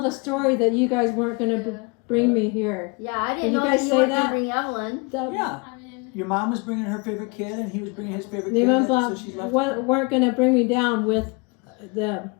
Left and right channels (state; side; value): quieter; right; 30.0 dB